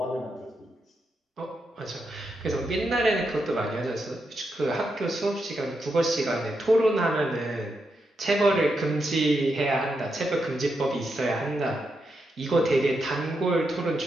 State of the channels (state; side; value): normal; both; correlation 0.84